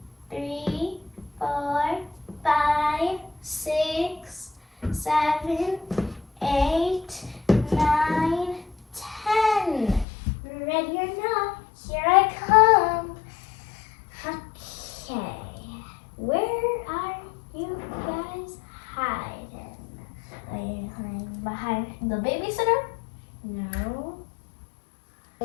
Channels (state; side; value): drops out; right; at 10.1 s